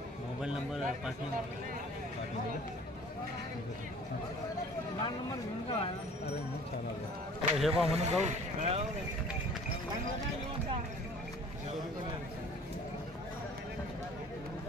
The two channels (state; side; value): normal; both; correlation 0.49